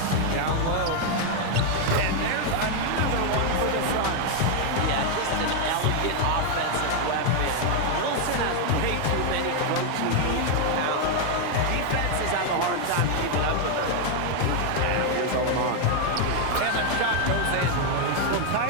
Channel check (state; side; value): different; both; correlation 0.00